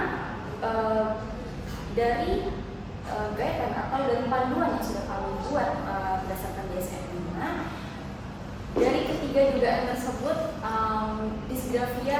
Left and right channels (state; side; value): identical; both; correlation 1.00